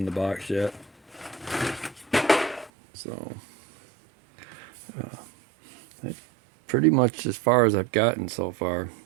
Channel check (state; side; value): drops out; left; at 2.7 s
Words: the box yet. So that's pretty much as far as I've gotten so far.